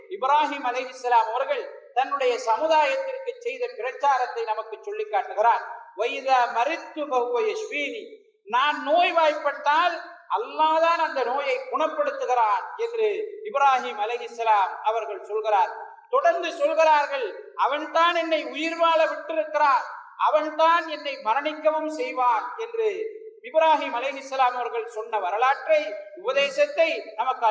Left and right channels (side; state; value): both; identical; correlation 1.00